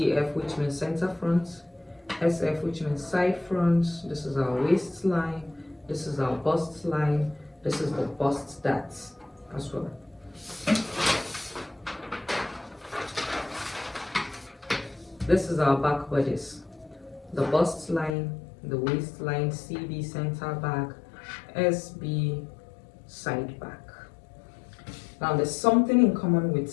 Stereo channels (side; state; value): right; drops out; at 18.2 s